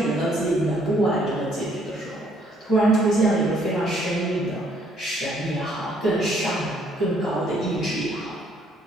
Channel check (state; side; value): normal; both; correlation 0.65